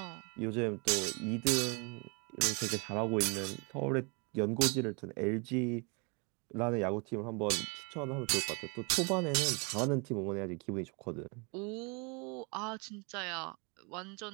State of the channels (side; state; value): left; quieter; 32.2 dB